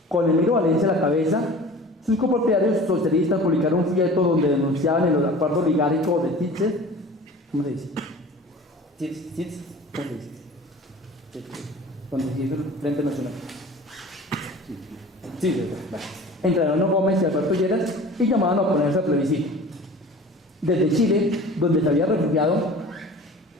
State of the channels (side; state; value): both; normal; correlation 0.41